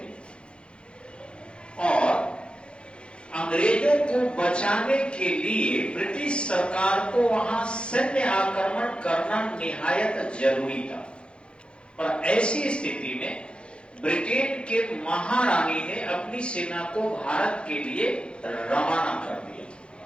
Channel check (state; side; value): late; right; 0.056 ms